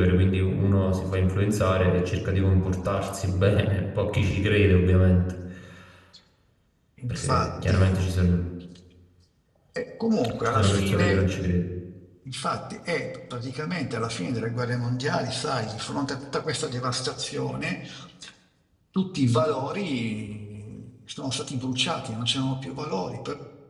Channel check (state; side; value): identical; both; correlation 1.00